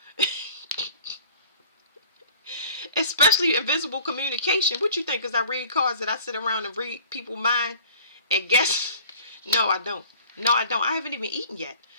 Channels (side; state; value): both; inverted; correlation -0.48